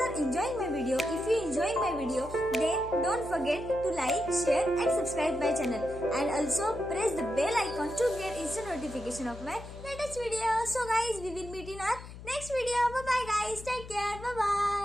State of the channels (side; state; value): left; noise; hum, 14 dB below the sound